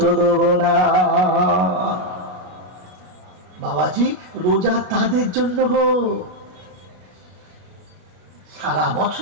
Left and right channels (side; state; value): left; late; 33 ms